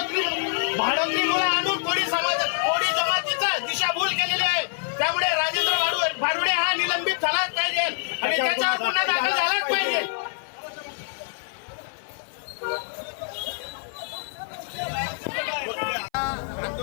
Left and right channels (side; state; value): right; silent; 56 dB below the other